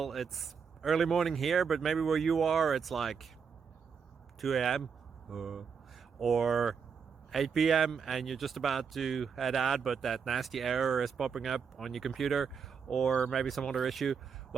it's early morning here, but maybe where you are it's like 2 a.m. or 8 p.m. and you're just about to head out, but that nasty error is popping up on your computer, or maybe some other issue.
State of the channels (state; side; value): quieter; left; 6.3 dB